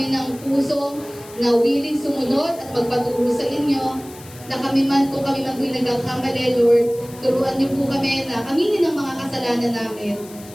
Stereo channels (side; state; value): left; noise; hiss, 20 dB below the sound